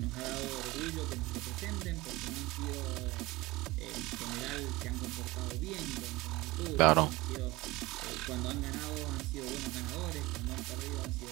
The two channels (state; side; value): quieter; left; 20.8 dB